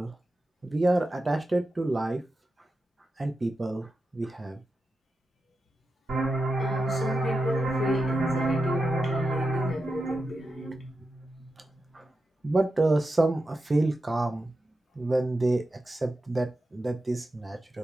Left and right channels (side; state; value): both; normal; correlation 0.90